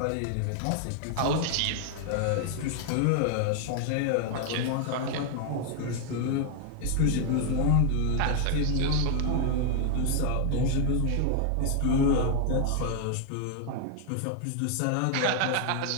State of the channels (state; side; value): different; both; correlation 0.00